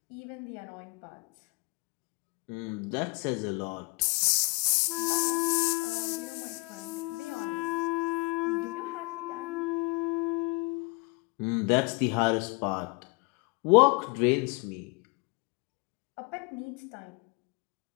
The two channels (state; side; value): quieter; right; 29.1 dB